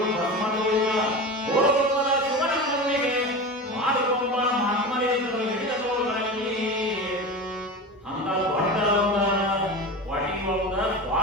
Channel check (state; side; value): normal; both; correlation 0.28